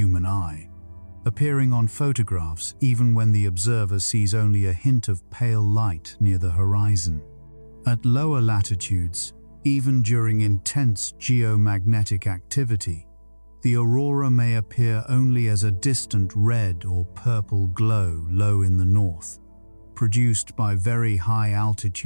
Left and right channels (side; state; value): both; inverted; correlation -1.00